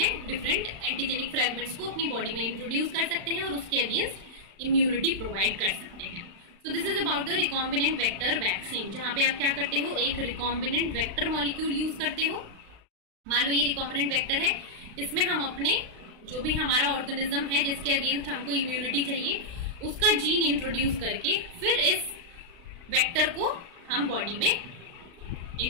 डिफरेंट एंटीजेनिक फ्रैगमेंट्स को अपनी बॉडी में इंट्रोड्यूस कर सकते हैं और उसके अगेंस्ट इम्यूनिटी प्रोवाइड कर सकते हैं। So this is about the recombinant vector vaccine, जहां पे आप क्या करते हो, एक रिकॉम्बिनेंट वेक्टर मॉलिक्यूल यूज करते हो। मान लो ये रिकॉम्बिनेंट वेक्टर है, इसमें हम अपने जो भी हमारा ऑर्गेनिज्म है जिसके अगेंस्ट हमको इम्यूनिटी चाहिए, उसका जीन इंट्रोड्यूस करके फिर इस वेक्टर को हम बॉडी में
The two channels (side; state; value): left; late; 36 ms